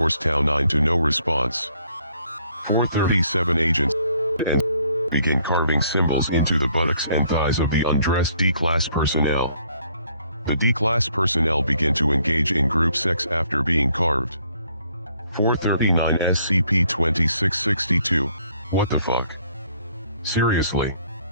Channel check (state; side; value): inverted; both; correlation -0.66